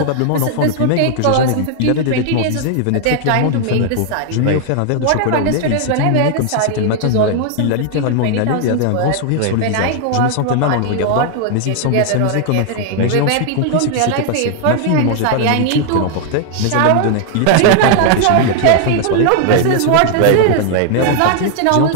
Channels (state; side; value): different; both; correlation 0.00